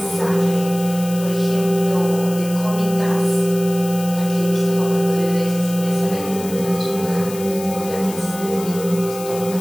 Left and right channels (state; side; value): noise; left; hiss, 13 dB below the sound